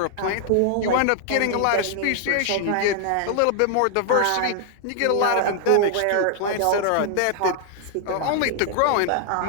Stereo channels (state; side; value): different; both; correlation 0.00